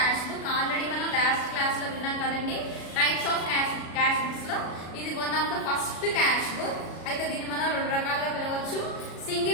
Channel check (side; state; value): right; late; 36 ms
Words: book. Already మనం last class లో విన్నాం కదండి types of cash books లో ఇది one of the first cash book. అయితే దీన్ని మనం రెండు రకాలుగా పిలవచ్చు,